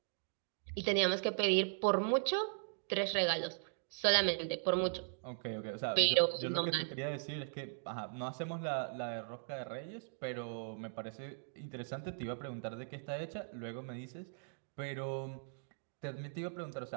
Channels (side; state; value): left; silent; digital silence